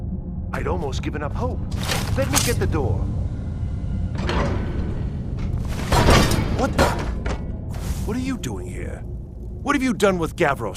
I'd almost given up hope. Let me get the door. What the? What are you doing here? What have you done with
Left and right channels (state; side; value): identical; both; correlation 1.00